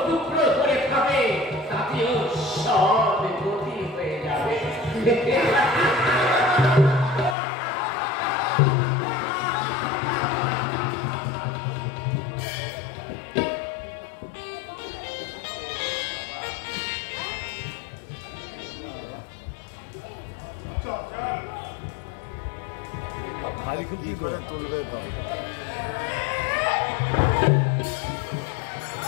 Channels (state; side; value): drops out; right; at 7.4 s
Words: টুকরো করে খাবে, তাতেও সব গতি হয়ে যাবে। ভারী খুব কি করে তুলবে তো?